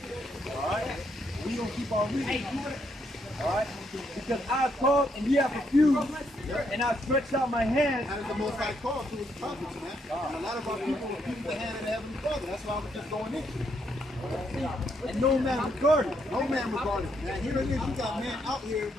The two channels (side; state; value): both; normal; correlation 0.75